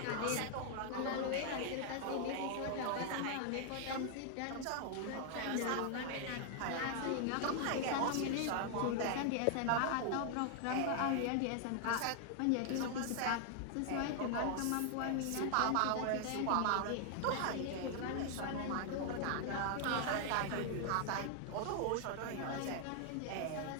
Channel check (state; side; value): different; both; correlation 0.00